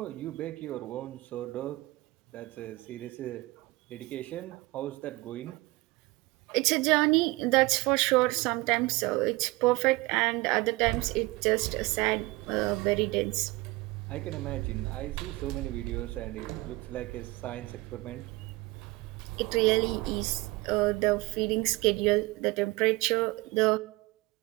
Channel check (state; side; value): quieter; left; 21.9 dB